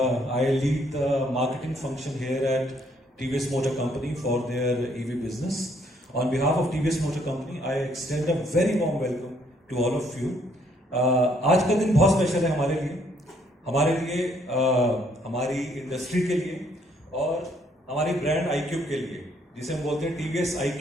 I lead the marketing function here at TVS Motor Company for their EV business. On behalf of TVS Motor Company, I extend a very warm welcome to all of you. आज का दिन बहुत स्पेशल है हमारे लिए हमारी इंडस्ट्री के लिए और हमारी ब्रांड iQube के लिए, जिसे हम बोलते हैं TVS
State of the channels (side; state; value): both; normal; correlation 0.67